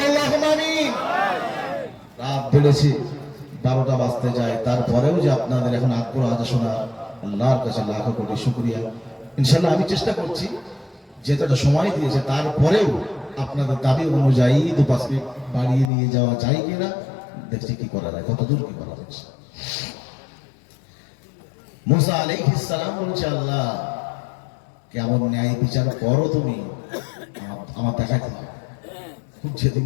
আল্লাহুম্মা আমিন। রাত বেড়েছে, 12টা বাজতে যায়, তারপরেও যে আপনাদের এখন আগ্রহ আছে শোনা, আল্লাহর কাছে লাখ কোটি শুকরিয়া। ইনশাআল্লাহ আমি চেষ্টা করছি যেটা সময় দিয়েছে তারপরেও আপনাদের দাবি অনুযায়ী 2-5 মিনিট বাড়িয়ে নিয়ে যাওয়া যায় কিনা দেখছি কি করা যায়, কতদূর কি করা যাচ্ছে। মুসা আলাইহিস সালাম বলছে, আল্লাহ কেমন ন্যায় বিচার করো তুমি, আমার দেখাতে হবে। খুব জেদি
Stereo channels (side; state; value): right; drops out; at 15.9 s